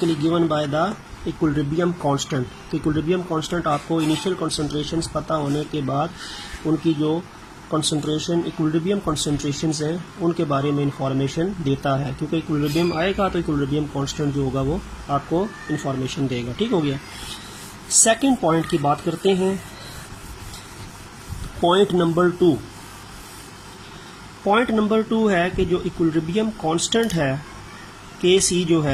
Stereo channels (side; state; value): both; identical; correlation 1.00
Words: given by the equilibrium constant. तो इक्विलिब्रियम कांस्टेंट आपको इनिशियल कंसंट्रेशंस पता होने के बाद उनकी जो कंसंट्रेशन इक्विलिब्रियम कंसंट्रेशंस हैं उनके बारे में इंफॉर्मेशन देता है, क्योंकि इक्विलिब्रियम आएगा तो इक्विलिब्रियम कांस्टेंट जो होगा वो आपको इंफॉर्मेशन देगा, ठीक हो गया। सेकंड पॉइंट की बात करते हैं, पॉइंट नंबर 2। पॉइंट नंबर 2 है कि जो इक्विलिब्रियम कांस्टेंट है के सी जो